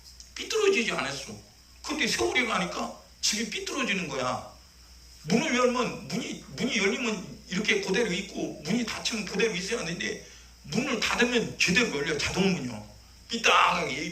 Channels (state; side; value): identical; both; correlation 1.00